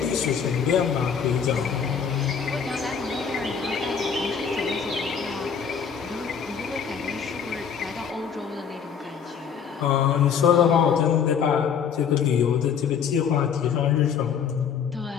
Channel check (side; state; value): right; quieter; 7.1 dB